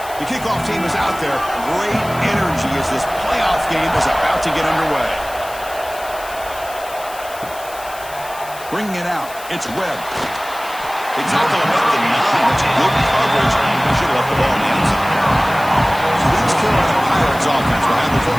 The kickoff team is out there. Great energy as this playoff game is about to get underway. Bringing it out, it's Webb. They tackle him at the 9. That's good coverage. They should have left the ball in the end zone. So the East Carolina Pirates offense will have the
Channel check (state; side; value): noise; left; hiss, 16 dB below the sound